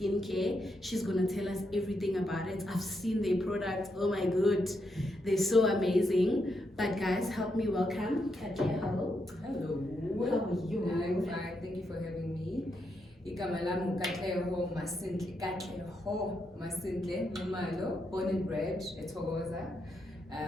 She's gonna tell us everything about it. I've seen their products. Oh my god, they're so amazing. But guys, help me welcome Katleho. Hello. How are you? I'm fine. Thank you for having me. Igama lami Katleho Nxumalo, born and bred eThokoza.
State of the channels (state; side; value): normal; both; correlation 0.81